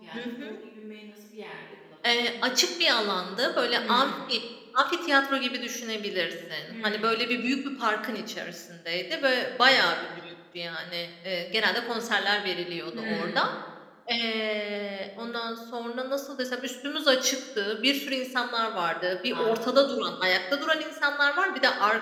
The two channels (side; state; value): both; identical; correlation 1.00